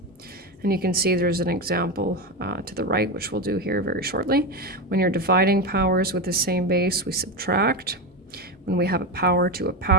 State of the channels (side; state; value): both; normal; correlation 0.16